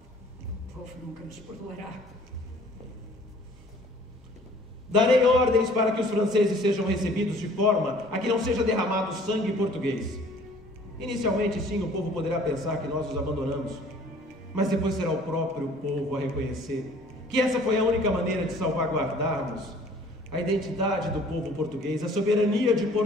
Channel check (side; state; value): both; normal; correlation 0.53